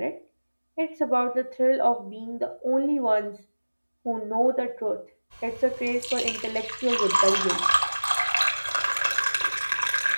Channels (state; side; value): inverted; both; correlation -1.00